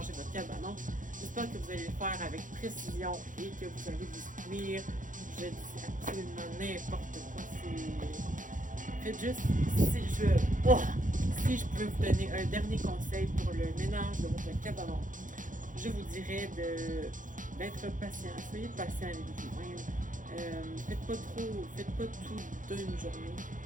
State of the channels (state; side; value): late; left; 0.38 ms